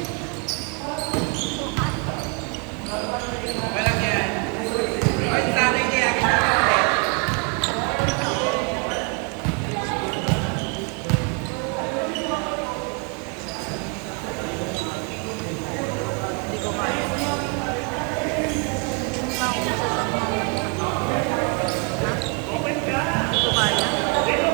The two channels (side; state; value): left; quieter; 35.8 dB